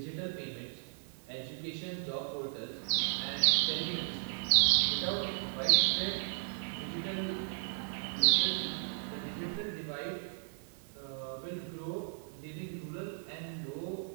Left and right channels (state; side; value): silent; left; digital silence